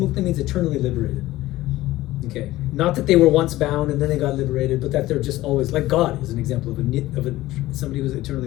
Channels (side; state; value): right; quieter; 16.7 dB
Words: means eternally liberated. Okay, not that they were once bound and then they got liberated, but that they're just always, like God is an example of somebody who's